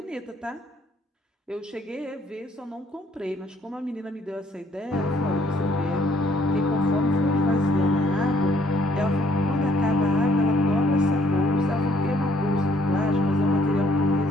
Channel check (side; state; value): both; normal; correlation 0.65